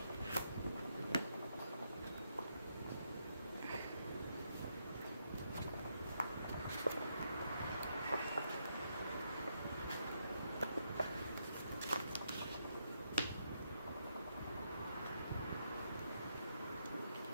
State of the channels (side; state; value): both; inverted; correlation -0.79